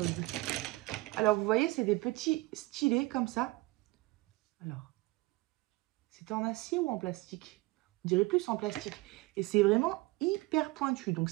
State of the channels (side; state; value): left; quieter; 21.7 dB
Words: Alors, vous voyez, c'est des petits stylets comme ça. Alors, c'est en acier ou en plastique? On dirait plus en plastique. Et c'est vraiment hyper pointu. Donc